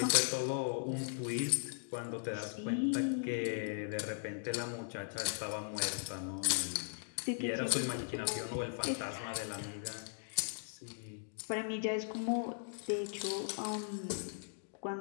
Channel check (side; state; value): right; silent; digital silence